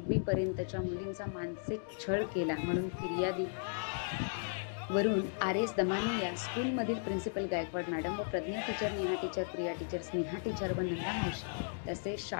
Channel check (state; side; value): silent; right; digital silence